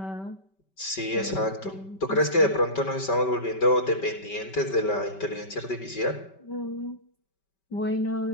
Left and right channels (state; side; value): late; right; 5.2 ms